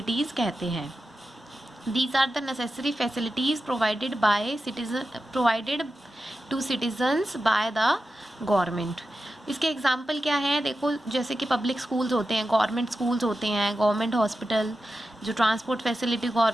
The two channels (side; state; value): both; normal; correlation 0.91